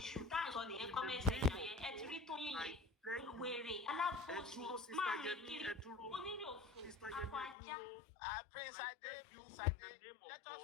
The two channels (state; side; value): drops out; right; at 7.6 s